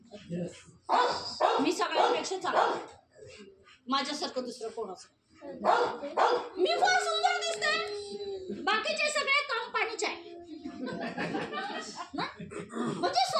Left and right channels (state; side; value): identical; both; correlation 1.00